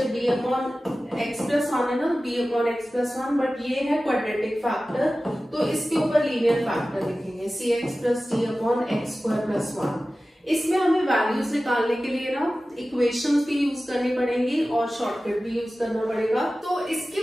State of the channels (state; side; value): normal; both; correlation 0.96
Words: b/x+1 है ना, b/x+1, बट ये है क्वाड्रेटिक फैक्टर तो इसके ऊपर लीनियर फैक्टर लिखेंगे cx + d/x² + 1। इसमें हमें वैल्यूज निकालने के लिए ना इक्वेशंस भी यूज करनी पड़ेंगी और शॉर्टकट भी यूज करना पड़ेगा। तो इसकी